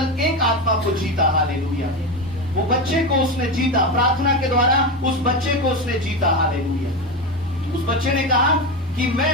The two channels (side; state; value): both; normal; correlation 0.17